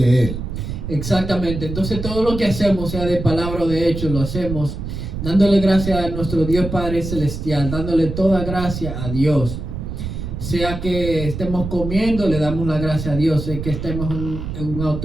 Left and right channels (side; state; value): right; noise; rumble, 6 dB below the sound